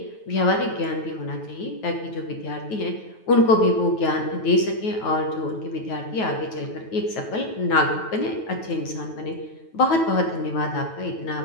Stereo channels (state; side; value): late; right; 9.2 ms